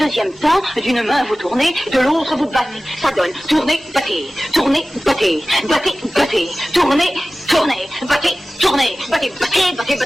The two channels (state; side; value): normal; both; correlation 0.96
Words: temps, d'une main vous tournez, de l'autre vous battez. Ça donne tourner, battez, tourner, battez, battez, battez, tourner, tourner, battez, tourner, battez, battez, battez,